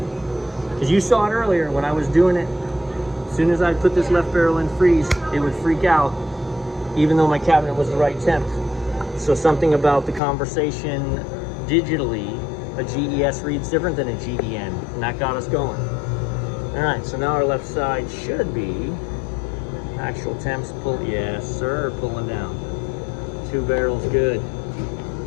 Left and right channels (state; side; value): drops out; right; at 10.2 s